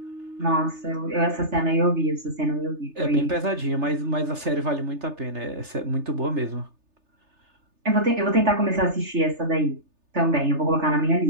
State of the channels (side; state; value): left; late; 3.3 ms